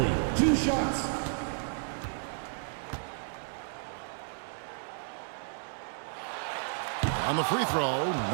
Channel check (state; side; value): silent; left; 56 dB below the other